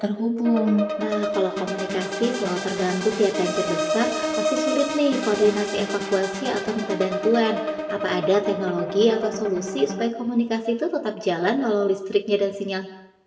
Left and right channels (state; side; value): identical; both; correlation 1.00